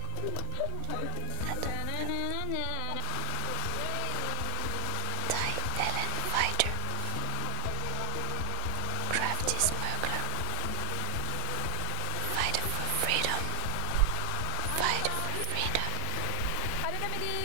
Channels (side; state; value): both; different; correlation 0.00